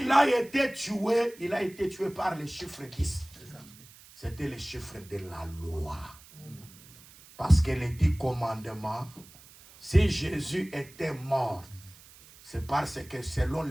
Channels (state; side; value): noise; right; hiss, 22 dB below the sound